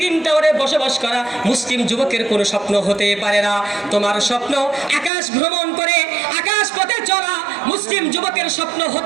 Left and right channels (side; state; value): left; drops out; at 5.1 s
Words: টাওয়ারে বসবাস করা মুসলিম যুবকের কোনো স্বপ্ন হতে পারে না। তোমার স্বপ্ন আকাশ ভ্রমণ করে আকাশ পথে চলা মুসলিম যুবকের স্বপ্ন